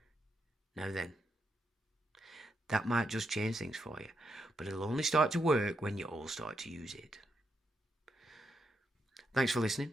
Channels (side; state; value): both; normal; correlation 0.82